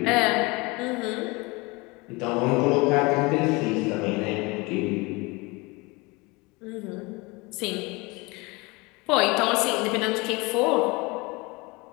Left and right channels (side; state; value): right; quieter; 25.4 dB